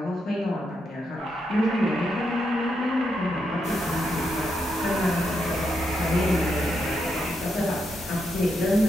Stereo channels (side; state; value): both; normal; correlation 0.82